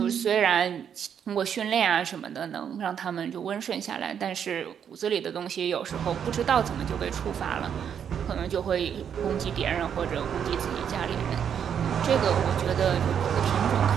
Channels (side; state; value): left; quieter; 8.2 dB